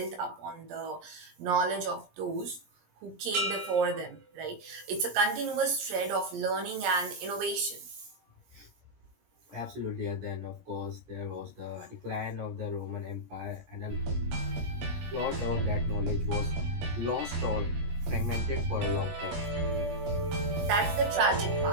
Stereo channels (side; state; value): left; late; 17 ms